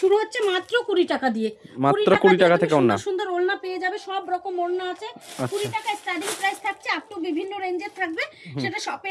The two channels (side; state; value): both; identical; correlation 1.00